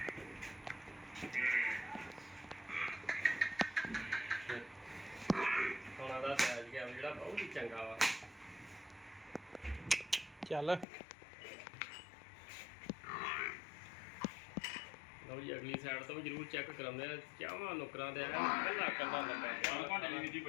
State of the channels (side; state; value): right; drops out; at 10.9 s